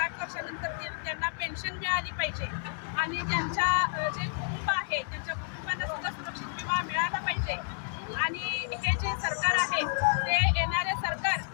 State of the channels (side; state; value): right; silent; 57 dB below the other